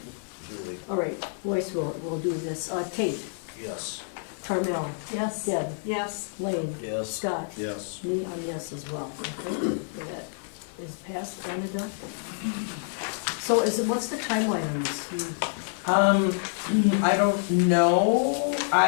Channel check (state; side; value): silent; right; digital silence